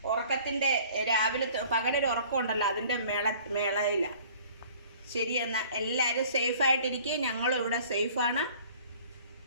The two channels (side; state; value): both; inverted; correlation -0.51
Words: ഉറക്കത്തിൻ്റെ രാവിലെ പകലൊരു ഉറക്കമുണ്ടല്ലോ, അതിൻ്റെ മേളയില്ല. ശരി, എന്നാൽ എല്ലാവരും സേഫായിട്ടിരിക്കുക. ഞങ്ങളും ഇവിടെ സേഫാണ്.